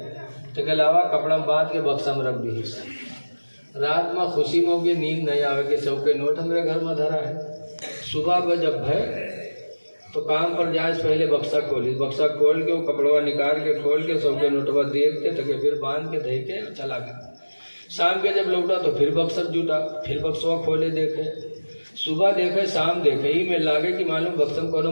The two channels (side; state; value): both; inverted; correlation -1.00